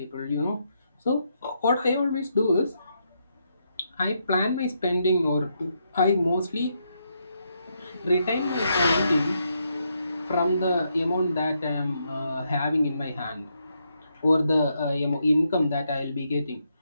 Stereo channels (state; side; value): inverted; both; correlation -0.79